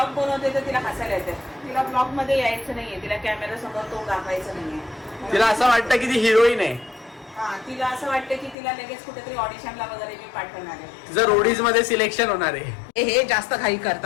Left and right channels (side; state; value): right; drops out; at 8.6 s